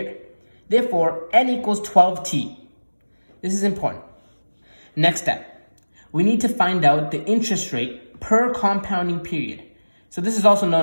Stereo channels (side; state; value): both; inverted; correlation -1.00